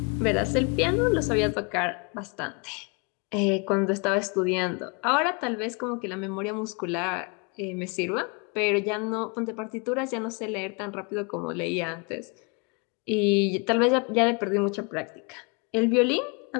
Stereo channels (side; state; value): right; quieter; 32.7 dB